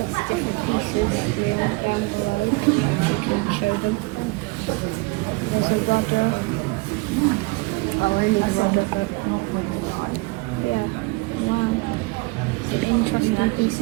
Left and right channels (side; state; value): left; quieter; 25.2 dB